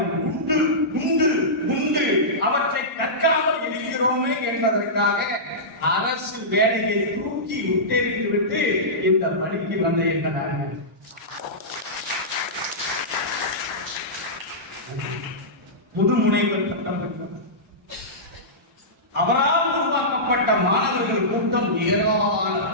உண்டு உண்டு உண்டு. அவற்றை கற்காமல் இருக்கிறோமே என்பதற்காக அரசு வேலையை தூக்கி உத்தேறித்து விட்டு இந்த பணிக்கு வந்த எங்கள் முதுமுனைவர் பட்டம் பெற்றவர். அவரால் உருவாக்கப்பட்ட மாணவர்கள் கூட்டம்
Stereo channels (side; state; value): both; normal; correlation -0.16